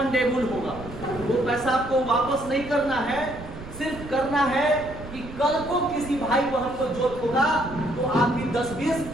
होगा। वो पैसा आपको वापस नहीं करना है, सिर्फ करना है कि कल को किसी भाई बहन को जरूरत होगा तो आप भी 10-20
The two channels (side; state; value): right; noise; rumble, 13 dB below the sound